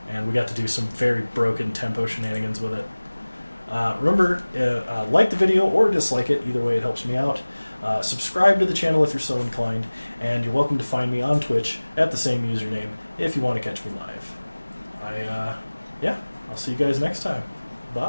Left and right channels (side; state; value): both; inverted; correlation -1.00